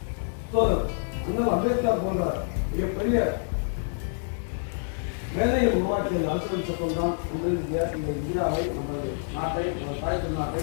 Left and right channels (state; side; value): silent; right; 56 dB below the other